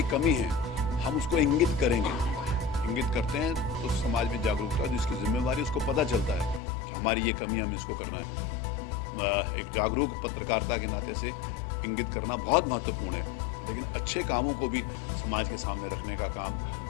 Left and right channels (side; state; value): right; drops out; at 6.6 s